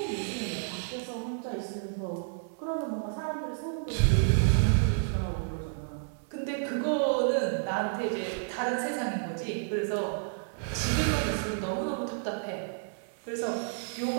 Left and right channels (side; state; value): left; silent; 57 dB below the other